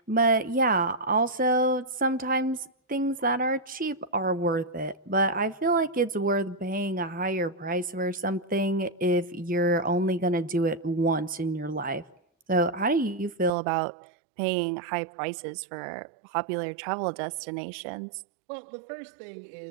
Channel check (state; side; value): drops out; left; at 13.5 s